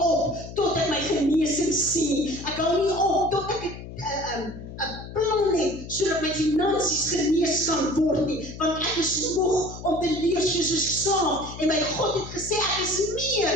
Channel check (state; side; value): noise; left; hum, 12 dB below the sound